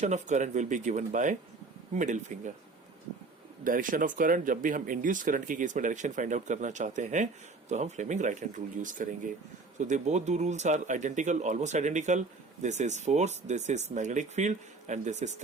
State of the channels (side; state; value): left; quieter; 3.8 dB